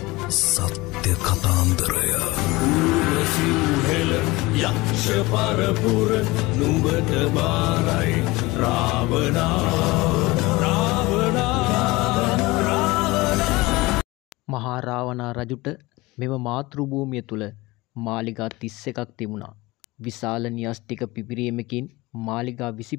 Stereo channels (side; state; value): right; quieter; 21.1 dB